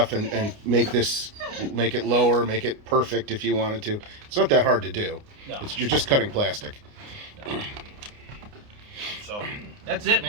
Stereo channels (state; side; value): late; left; 29 ms